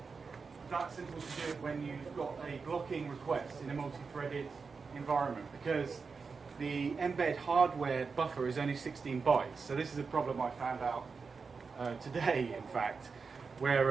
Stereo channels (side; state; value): left; quieter; 4.9 dB